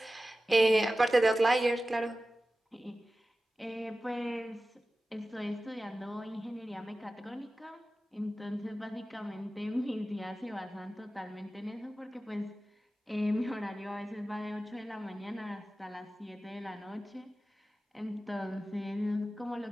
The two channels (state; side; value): normal; both; correlation 0.95